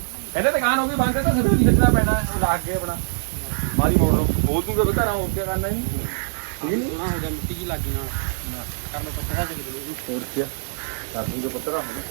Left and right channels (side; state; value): left; silent; 63 dB below the other